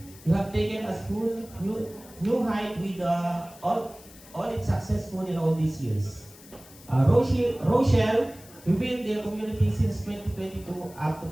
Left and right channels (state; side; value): noise; left; hiss, 21 dB below the sound